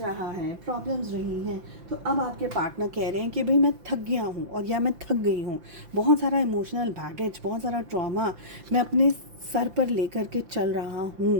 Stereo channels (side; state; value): left; late; 5.8 ms